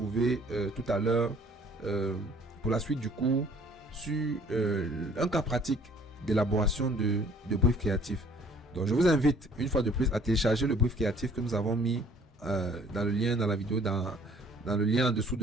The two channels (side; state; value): both; normal; correlation 0.57